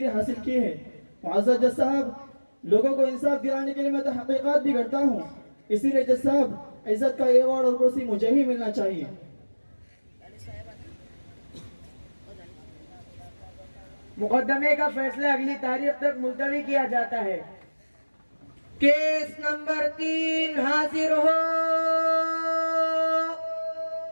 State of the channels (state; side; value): inverted; both; correlation -1.00